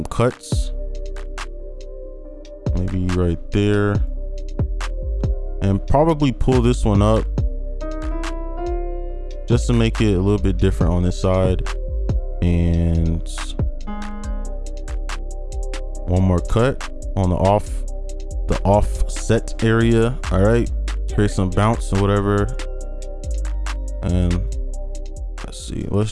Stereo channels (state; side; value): identical; both; correlation 1.00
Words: cuts, maybe right there, and probably pull this one up just to make it a little bit different on this side. And one more cut on the offset area. All right, create some bounce or whatever. And let's see,